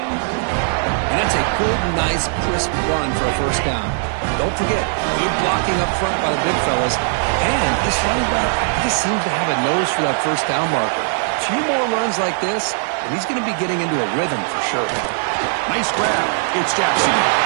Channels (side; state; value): left; silent; 66 dB below the other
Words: And that's a good, nice, crisp run for a first down. Don't forget, good blocking up front by the big fellas. And this running back just seems to have a nose for that first down marker. A few more runs like this, and he's going to be getting into a rhythm for sure. Nice grab. It's Jackson.